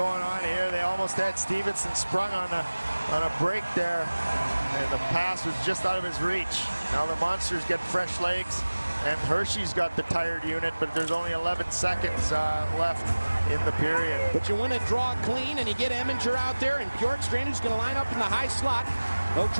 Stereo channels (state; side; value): inverted; both; correlation -1.00